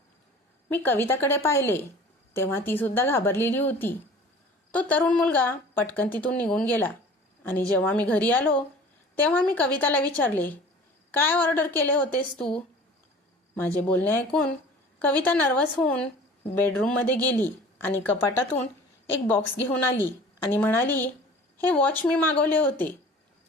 मी कविताकडे पाहिले तेव्हा ती सुद्धा घाबरलेली होती. तो तरुण मुलगा पटकन तिथून निघून गेला, आणि जेव्हा मी घरी आलो तेव्हा मी कविताला विचारले, काय ऑर्डर केले होतेस तू? माझे बोलणे ऐकून कविता नर्वस होऊन बेडरूममध्ये गेली आणि कपाटातून एक बॉक्स घेऊन आली आणि म्हणाली, हे वॉच मी मागवले होते.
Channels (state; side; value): normal; both; correlation 0.44